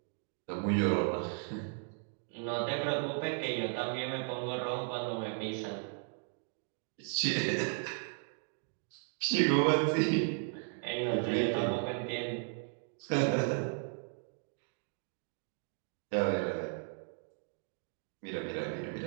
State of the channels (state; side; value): silent; left; 54 dB below the other